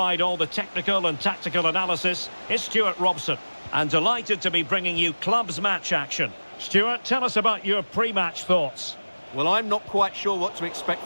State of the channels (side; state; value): both; inverted; correlation -1.00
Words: all the technical and tactical analysis, is Stuart Robson. And delighted to be bringing you clubs match action. Stuart, tell us about your pre-match thoughts. Well, I'm not quite sure what to expect